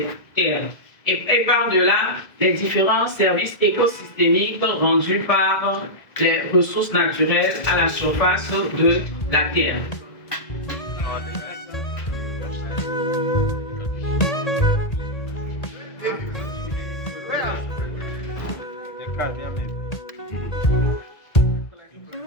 terres. Et par-delà, les différents services écosystémiques rendus par les ressources naturelles à la surface de la Terre.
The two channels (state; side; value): late; right; 1.8 ms